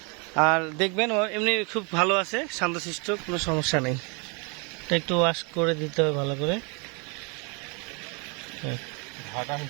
আর দেখবেন ও এমনি খুব ভালো আছে, শান্তশিষ্ট, কোনো সমস্যা নেই। এটা একটু ওয়াশ করে দিতে হবে ভালো করে।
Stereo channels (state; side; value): quieter; left; 33.2 dB